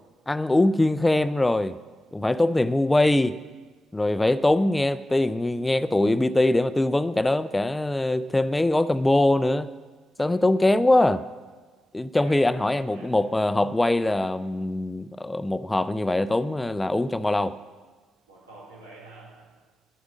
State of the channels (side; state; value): both; normal; correlation 0.98